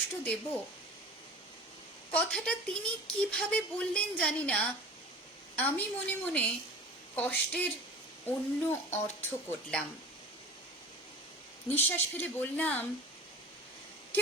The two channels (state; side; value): normal; both; correlation 0.38